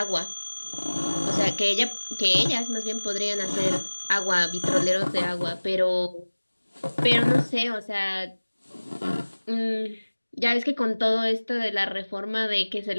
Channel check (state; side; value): inverted; both; correlation -1.00